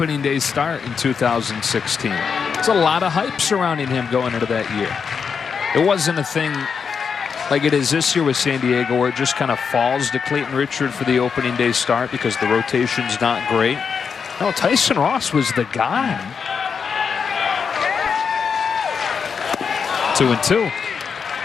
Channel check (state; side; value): quieter; right; 6.2 dB